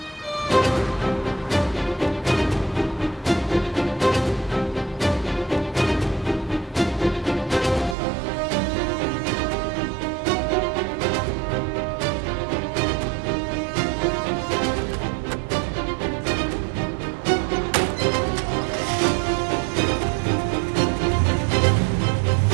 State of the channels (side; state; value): left; drops out; at 8.0 s